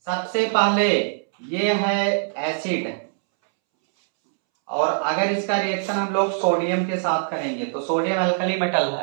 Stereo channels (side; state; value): left; silent; 64 dB below the other